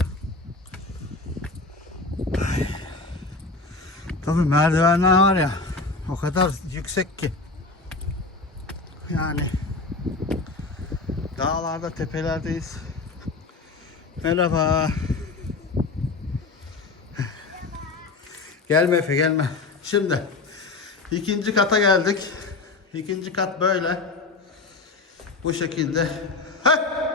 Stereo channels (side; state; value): right; quieter; 3.7 dB